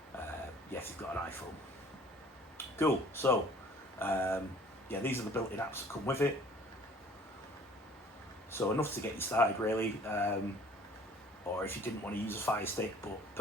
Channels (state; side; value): normal; both; correlation 0.52